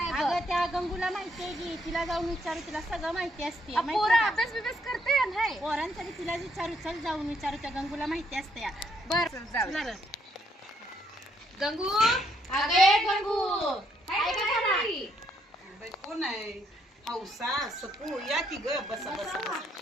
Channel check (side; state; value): both; normal; correlation 0.72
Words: बघ. अगं त्या गंगूला माहिती आहे की, तिला जाऊन विचारू, तिला सगळं माहिती असते. माहिती पोरं आहे का? अभ्यास बिभ्यास करते नाही. पोरांसाठी तिला विचारू, चल जाऊन विचारू, त्या गंगूला माहिती असते या. बर जाऊ चला रे. गंगू, अगे गंगू, काय करणार? बाई कोण आहे? हौसा सकू या की ग, बसा बसा बसा.